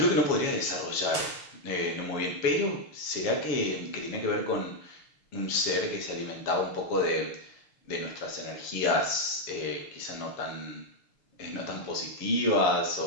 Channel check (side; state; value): right; late; 6.5 ms